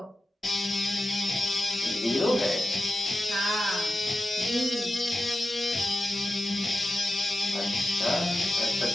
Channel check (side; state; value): both; normal; correlation 0.93